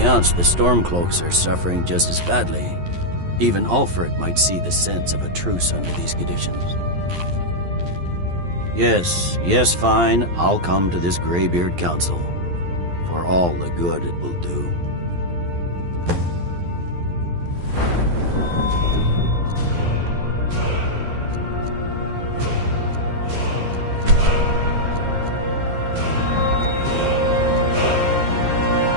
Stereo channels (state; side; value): late; left; 11 ms